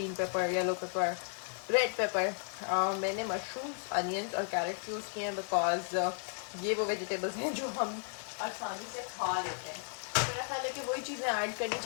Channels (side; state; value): right; silent; 55 dB below the other